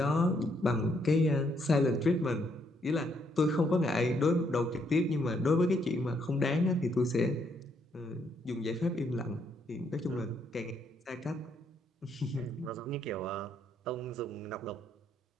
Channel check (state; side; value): normal; both; correlation 0.73